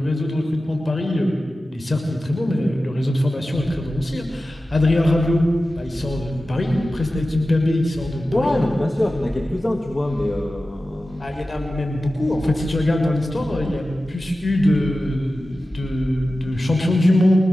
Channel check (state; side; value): normal; both; correlation 0.94